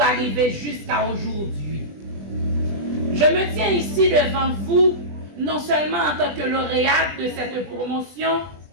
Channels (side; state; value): left; late; 20 ms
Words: arriver jusqu'à aujourd'hui. Je me tiens ici devant vous, non seulement en tant que lauréate de cette promotion,